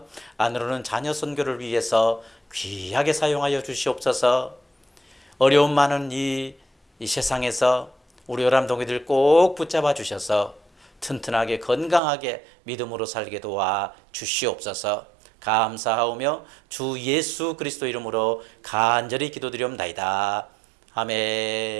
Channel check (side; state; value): left; drops out; at 12.0 s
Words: 안으로는 자녀 선교를 위해서 귀하게 사용하여 주시옵소서. 어려움 많은 이 세상에서 우리 요람동이들 꼭 붙잡아 주셔서 튼튼하게 건강하게 믿음으로 살게 도와 주시옵소서. 감사하오며 주 예수 그리스도 이름으로 간절히 기도드리옵나이다.